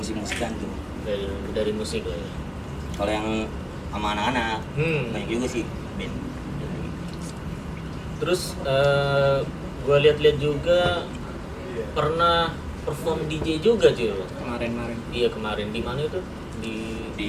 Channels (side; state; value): both; identical; correlation 1.00